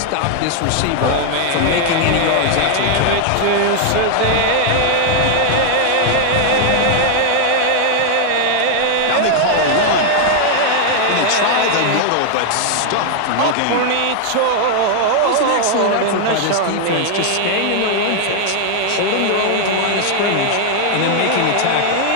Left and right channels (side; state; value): both; different; correlation 0.00